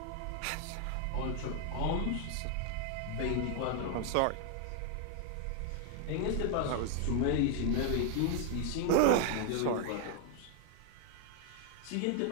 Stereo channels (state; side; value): different; both; correlation 0.00